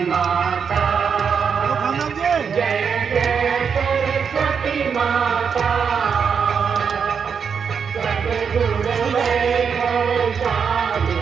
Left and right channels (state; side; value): quieter; left; 6.5 dB